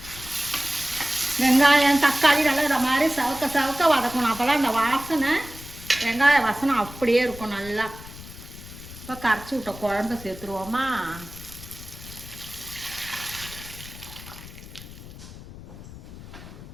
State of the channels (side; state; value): left; noise; rumble, 15 dB below the sound